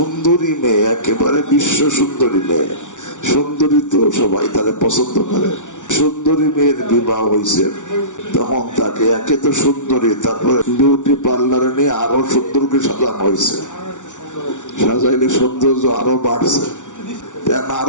মেয়ে, একেবারে বিশ্ব সুন্দরী মেয়ে, সুন্দরী তো সবাই তারা পছন্দ করে। সুন্দরী মেয়ের বিবাহ হয়েছে, তখন তাকে একে তো সুন্দরী, তারপরে বিউটি পার্লারে নিয়ে আরো সুন্দরকে সাজানো হয়েছে। সাজাইলে সৌন্দর্য আরো বাড়ছে,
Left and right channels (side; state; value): right; late; 0.86 ms